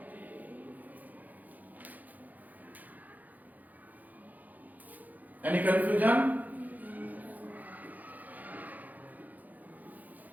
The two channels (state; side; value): late; left; 0.081 ms